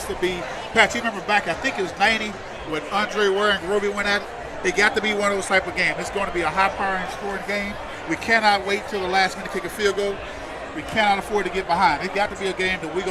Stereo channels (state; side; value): identical; both; correlation 1.00